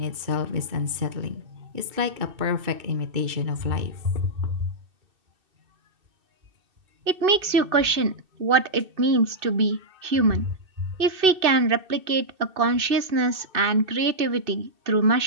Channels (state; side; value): late; left; 2.6 ms